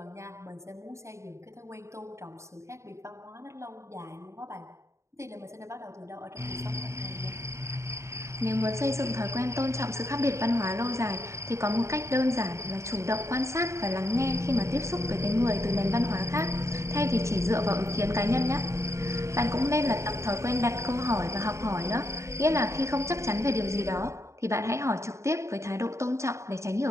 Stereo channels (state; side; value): late; left; 0.14 ms